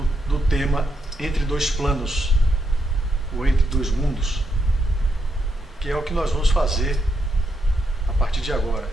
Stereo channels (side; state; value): both; normal; correlation 0.80